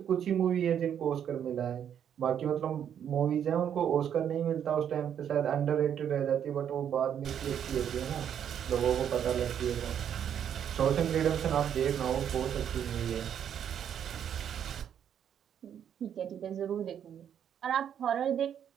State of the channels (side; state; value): left; quieter; 9.0 dB